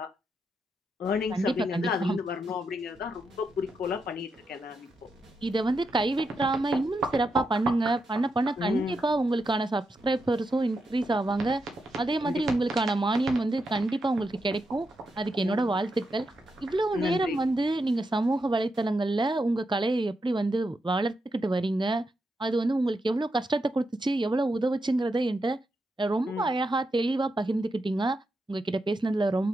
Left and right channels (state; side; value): normal; both; correlation 0.84